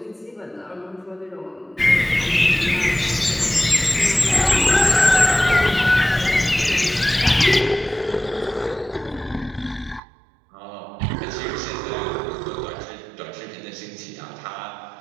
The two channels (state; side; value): drops out; left; at 10.0 s